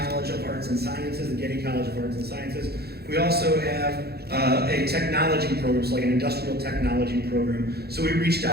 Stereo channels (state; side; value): late; left; 0.46 ms